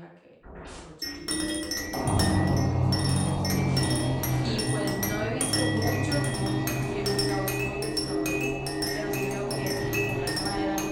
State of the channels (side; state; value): both; identical; correlation 1.00